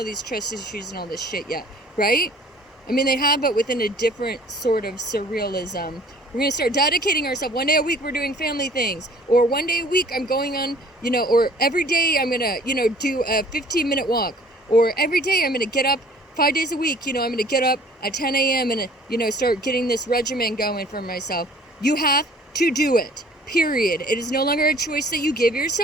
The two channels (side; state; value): both; normal; correlation 0.53